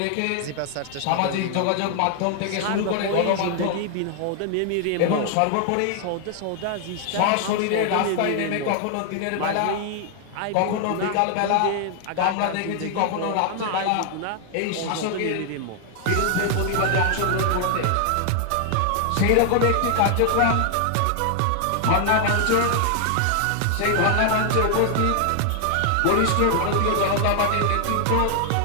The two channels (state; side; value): different; both; correlation 0.00